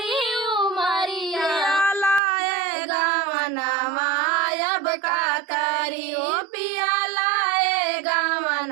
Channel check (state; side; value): drops out; left; at 2.2 s